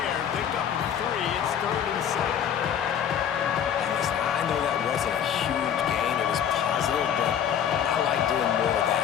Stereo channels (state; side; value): quieter; right; 8.9 dB